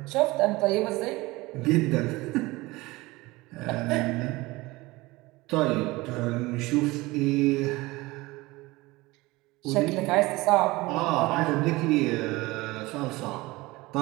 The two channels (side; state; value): left; quieter; 21.2 dB